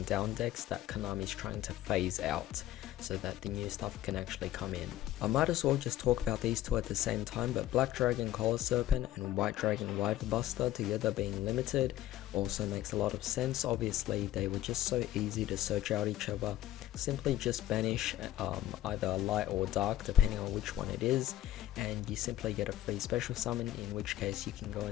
down decks that Konami's trying to phase out, so that the new stuff can actually come in. I might as well just talk about these two at the same time, but Black Dragon Collar Serpent and White Dragon Wyvern Buster together being limited also makes a lot of sense. Obviously they were just so easy to search out each other. Simply just banish either light or dark depending on which one it is, and you simply get a free special summon, in which case you can go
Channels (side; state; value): right; quieter; 13.7 dB